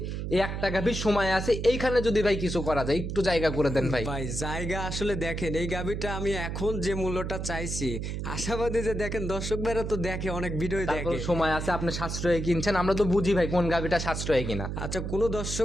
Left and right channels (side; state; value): right; noise; hum, 4 dB below the sound